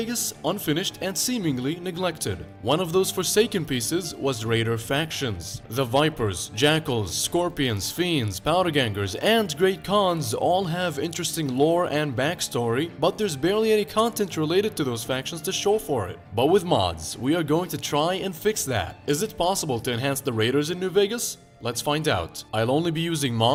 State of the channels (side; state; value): both; identical; correlation 1.00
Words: unfinished and seemingly neglected. One of those forsaken pieces was Raider factions. The Vipers, Jackals, Scorpions, Fiends, Powdergangers, and Great Khans all have interesting lore and backstory, but there's barely any content related to those factions to show for it. But with mods, we are going to try and fix that. Is it possible to enhance the Raiders in New Vegas? Let's find out. I'll only be using